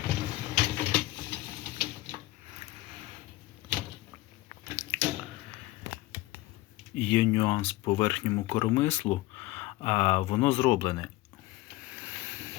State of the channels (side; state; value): right; quieter; 18.5 dB